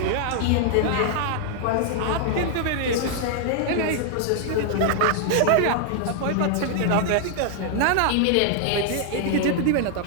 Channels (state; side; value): different; both; correlation 0.00